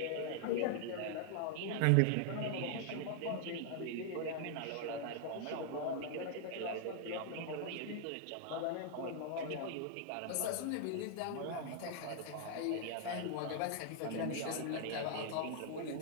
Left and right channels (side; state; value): both; different; correlation 0.00